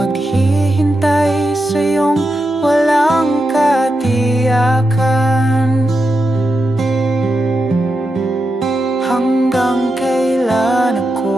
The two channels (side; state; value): both; normal; correlation 0.87